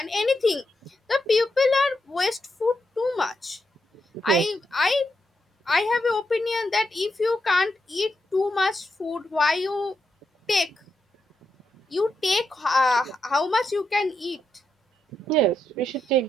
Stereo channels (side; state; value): both; normal; correlation 0.83